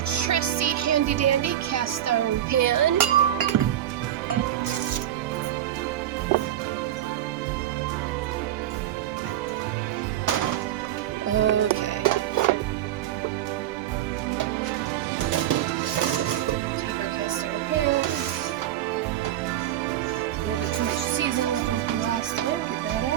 handy-dandy cast iron pan. Okay. Take our cast iron pan. A little bit too much seasoning left over from last time. Get that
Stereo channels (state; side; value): quieter; left; 12.0 dB